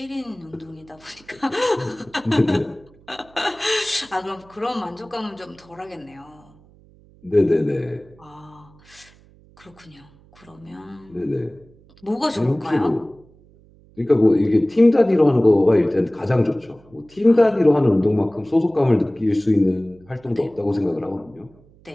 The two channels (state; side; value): noise; right; hum, 27 dB below the sound